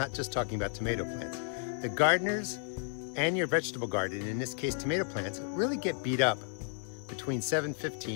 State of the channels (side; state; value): right; silent; 56 dB below the other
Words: just talking about tomato plants. The gardeners and your vegetable garden, in this case tomato plants, really get beat up between